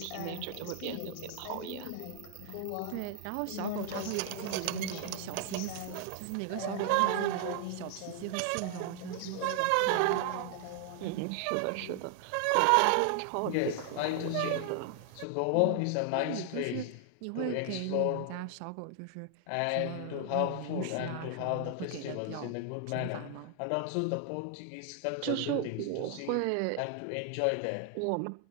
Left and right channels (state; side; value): different; both; correlation 0.00